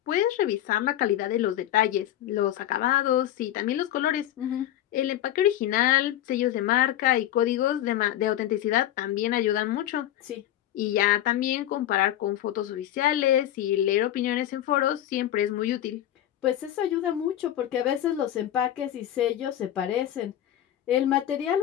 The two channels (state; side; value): quieter; right; 12.4 dB